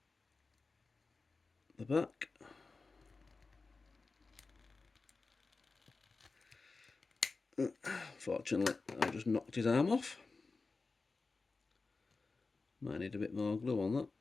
the back. Fortunately, I just knocked his arm off. Might need a bit more glue on that.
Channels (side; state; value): right; quieter; 4.0 dB